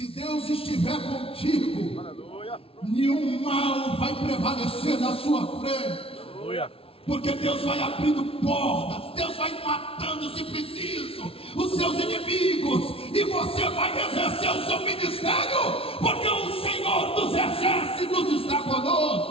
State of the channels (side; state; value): right; late; 0.27 ms